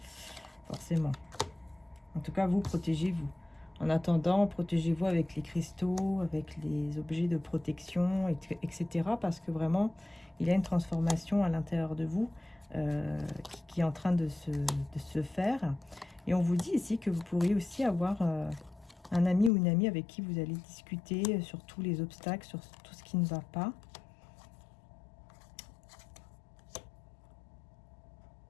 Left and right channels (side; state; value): right; drops out; at 19.5 s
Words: forcément. En tout cas, vous, protégez-vous. En attendant, protégez-vous avec les cristaux, avec les objets de protection, etc. Parce que vraiment, il y a une transformation à l'intérieur de vous qui est en train de se faire. Et on vous dit ici que vous pourriez aussi avoir un ami ou une amie avec qui vous allez discuter sur tous les obstacles, sur tout ce qui ne va pas.